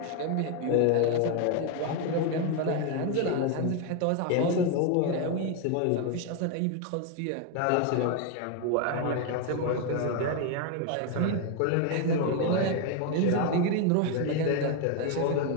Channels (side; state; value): both; different; correlation 0.01